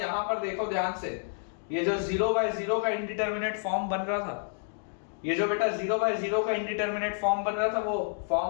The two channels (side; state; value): right; silent; digital silence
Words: पर देखो ध्यान से, ये जो 0/0 का इंडिटरमिनेट फॉर्म बन रहा था, ये जो बेटा 0/0 का इंडिटरमिनेट फॉर्म बन रहा था, वो